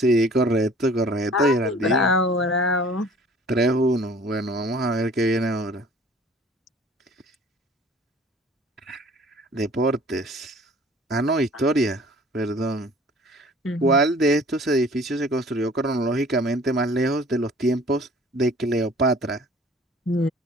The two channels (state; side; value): normal; both; correlation 0.50